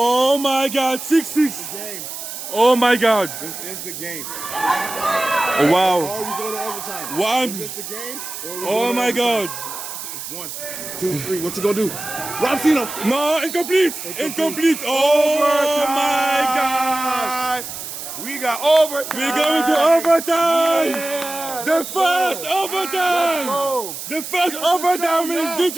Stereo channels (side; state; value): right; noise; hiss, 9 dB below the sound